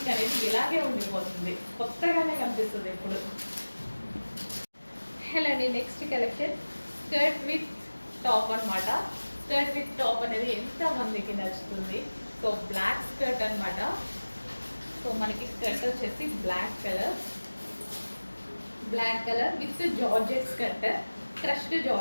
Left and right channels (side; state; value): both; inverted; correlation -1.00